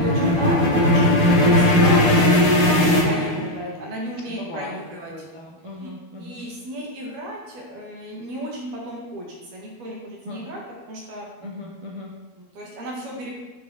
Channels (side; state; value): left; late; 12 ms